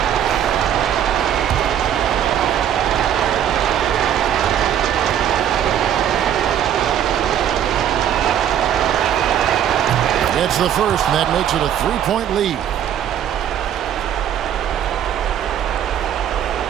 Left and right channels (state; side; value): quieter; left; 9.9 dB